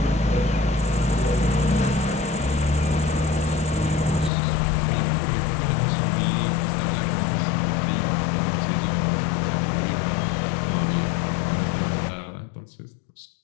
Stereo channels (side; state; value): right; drops out; at 4.3 s